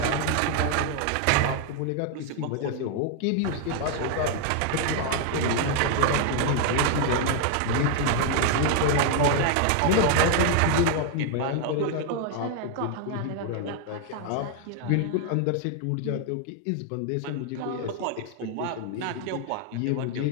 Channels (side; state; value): both; different; correlation 0.00